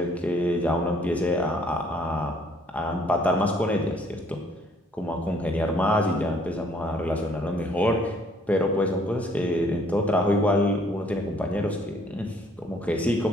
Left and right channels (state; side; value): normal; both; correlation 0.62